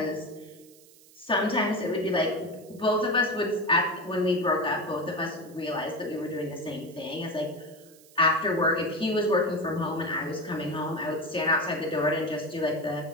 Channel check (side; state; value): right; noise; hiss, 25 dB below the sound